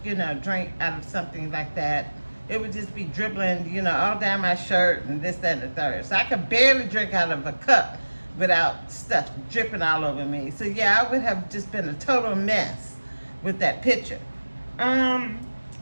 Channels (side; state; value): both; inverted; correlation -1.00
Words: drink out of something like that. It would just be dribbling, all down my shirt and this, that, and the third. So I could barely drink out of a cup without stuff dripping all over me. So yeah, I would have just been a total mess with that picture.